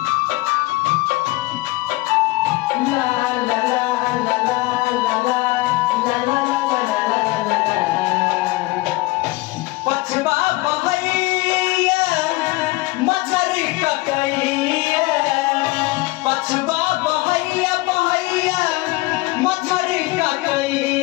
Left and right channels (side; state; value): right; quieter; 21.6 dB